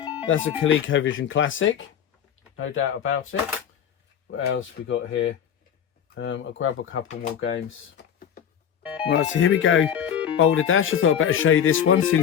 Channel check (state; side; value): quieter; right; 8.8 dB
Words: that's a ColecoVision classic. No doubt about it. What else we got here? I'll grab a couple more games. Right, so here we go. Boulder Dash. I thought I'd better show you this one